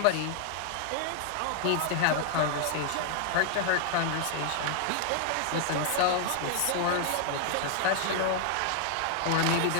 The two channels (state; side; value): different; both; correlation 0.00